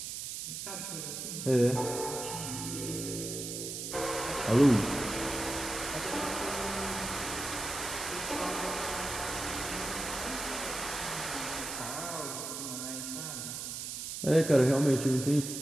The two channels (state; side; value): noise; right; hiss, 6 dB below the sound